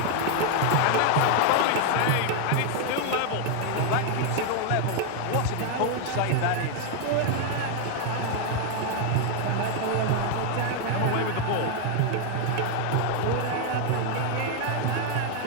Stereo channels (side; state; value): both; different; correlation 0.00